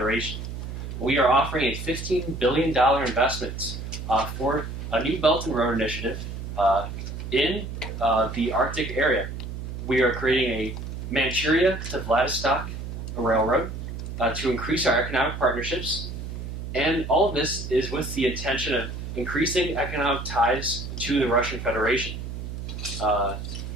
We are offering a $15 billion investment for a new Belt and Road Initiative in the Arctic area. We are creating a Manchuria to Vladivostok railroad to increase our economic partnerships, and all of this is with the intention of increasing economic ties to the Russian Federation.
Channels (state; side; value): noise; right; hum, 7 dB below the sound